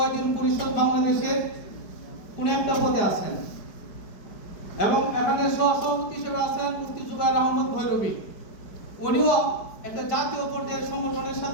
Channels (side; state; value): right; late; 4.9 ms